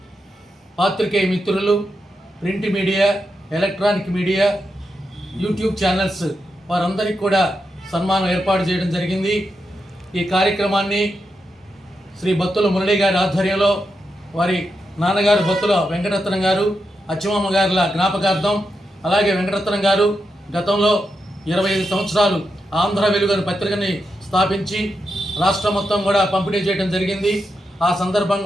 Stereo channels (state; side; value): normal; both; correlation 0.86